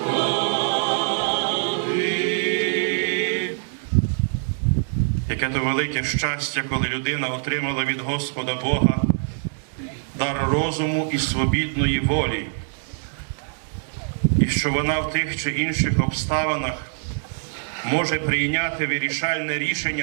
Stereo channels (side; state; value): left; silent; digital silence